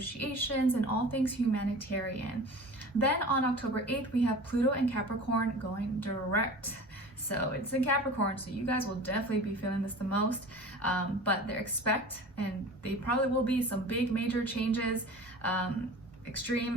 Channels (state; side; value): normal; both; correlation 0.38